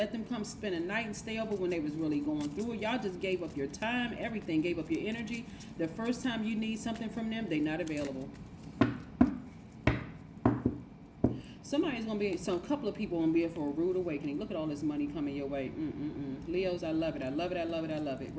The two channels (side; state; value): both; identical; correlation 1.00